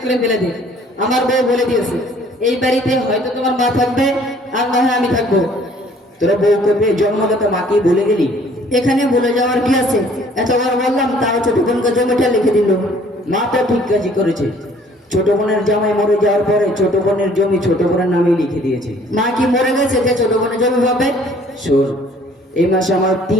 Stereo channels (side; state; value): both; normal; correlation 0.57